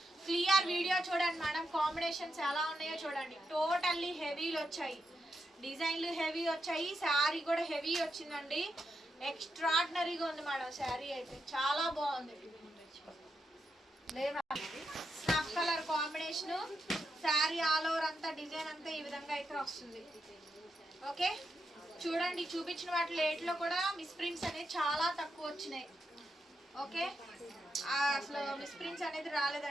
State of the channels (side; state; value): both; normal; correlation 0.85